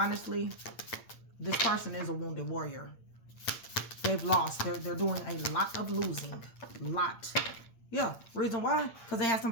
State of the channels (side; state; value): right; late; 8.7 ms